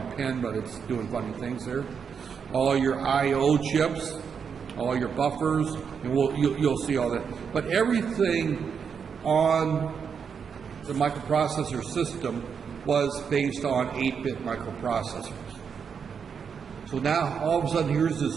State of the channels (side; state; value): left; quieter; 6.6 dB